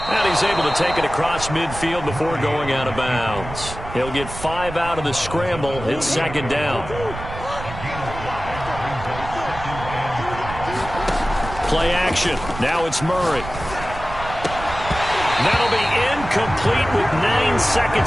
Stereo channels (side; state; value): right; noise; rumble, 11 dB below the sound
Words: And he's able to take it across midfield before going out of bounds. He'll get 5 out of the scramble. It's second down. Play action. Now it's Murray. That'll be incomplete with 9